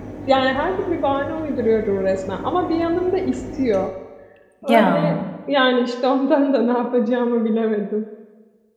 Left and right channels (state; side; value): identical; both; correlation 1.00